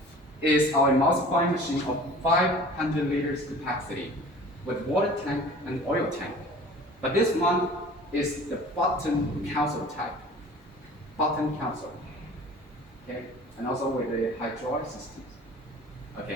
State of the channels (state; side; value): normal; both; correlation 0.45